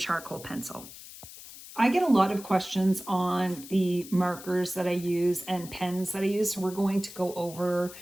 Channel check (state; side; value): noise; left; hiss, 15 dB below the sound